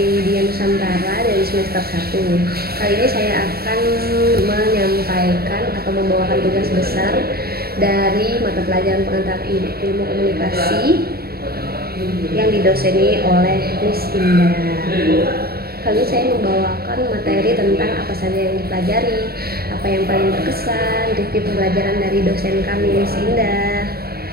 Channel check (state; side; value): late; left; 0.45 ms